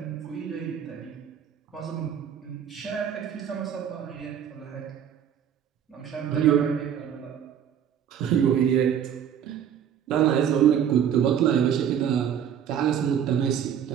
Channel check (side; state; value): left; quieter; 8.9 dB